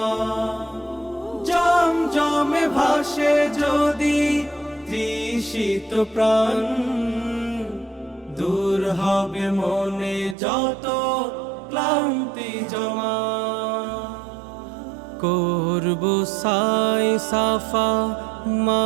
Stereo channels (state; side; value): drops out; left; at 10.4 s